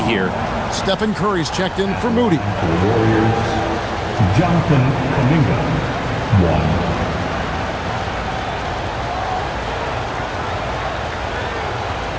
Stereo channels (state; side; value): identical; both; correlation 1.00